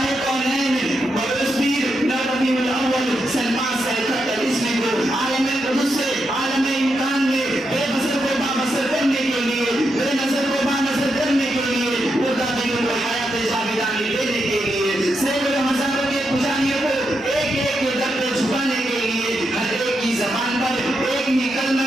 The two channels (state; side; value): normal; both; correlation 0.84